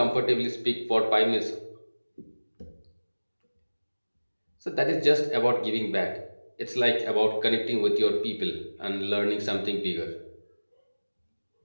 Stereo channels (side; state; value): both; inverted; correlation -1.00